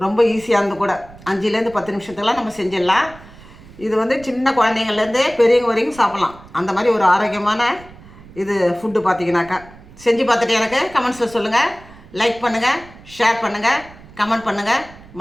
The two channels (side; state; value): right; noise; rumble, 21 dB below the sound